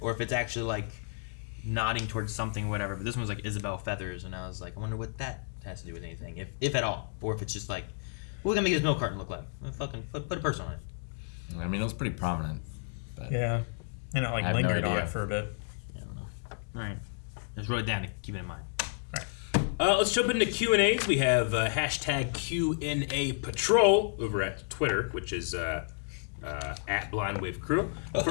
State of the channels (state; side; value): silent; right; digital silence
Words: if it's actually, like, nodding towards something or whatever. But this one was, like, Isabel Feathers, and I was like, I wonder what that has to do with anything, if at all. Or if it's just like, what are we going to make this milk carton look like? Well, fucking put a person on it. I mean, it was pretty prominent. But yeah. And it, like, lingered on it for a bit. Alright. Just wrote it down to keep it in mind. Let's jump into Q&As. We have hashtag Q&A Patrol over at Twitter, which is at Blind Wave Crew.